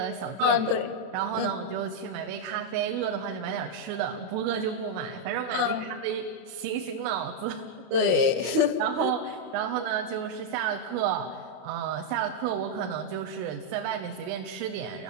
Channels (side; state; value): left; late; 32 ms